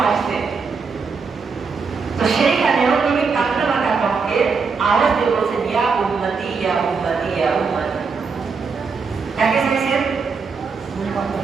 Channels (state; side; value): quieter; left; 5.1 dB